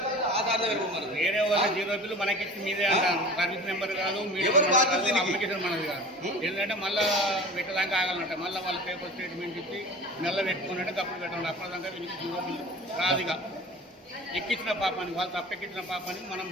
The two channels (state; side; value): normal; both; correlation 0.39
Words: వేరే వాళ్ళ 0 బిల్లు మనకిచ్చి మీదే అంటాను సర్వీస్ నెంబర్ కాదు అప్లికేషన్ మనది కాదు ఏంటంటే మళ్ళీ పెట్టడానికి ఆగాలంట మళ్ళీ వాళ్ళ పేపర్ స్టేట్మెంట్ ఇచ్చి నెల పెట్టుకున్నట్టే తప్పుడు పెట్టండి అప్పటిదాకా వీళ్ళకి 0 బిల్లు రాదుగా ఎక్కించిన పాపానికి వాళ్ళు తప్పెక్కించిన పాపానికి మనం